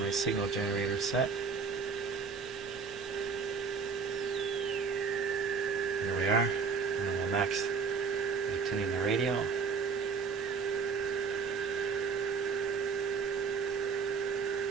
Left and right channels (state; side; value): quieter; left; 5.4 dB